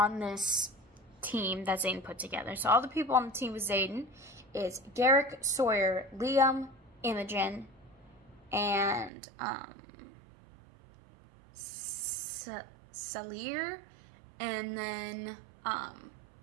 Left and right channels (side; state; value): left; drops out; at 9.1 s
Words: this team that Xaden put together. So all the people on the team with Xaden is Garrick, Sawyer, Liam, Imogen, and Salir, and then